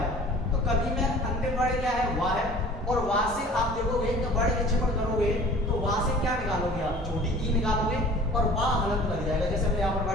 तो कवि में अंतिम वर्ड क्या है, वाह है, और वाह से आप देखोगे तो वर्ड विक्षेपण करोगे तो वाह से क्या निकालोगे, आप छोटी ई निकालोगे और वाह हलंत लग जाएगा, जैसे मैंने यहाँ पर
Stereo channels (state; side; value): normal; both; correlation 0.46